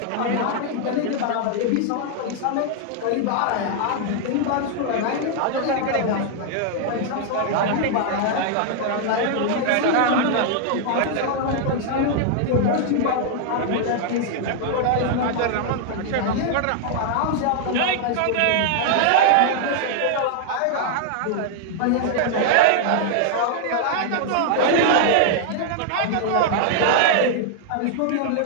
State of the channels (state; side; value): different; both; correlation 0.00